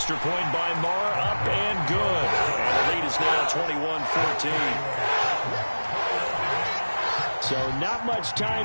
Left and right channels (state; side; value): inverted; both; correlation -1.00